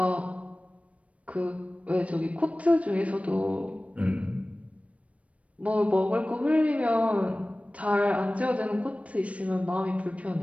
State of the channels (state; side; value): late; left; 0.064 ms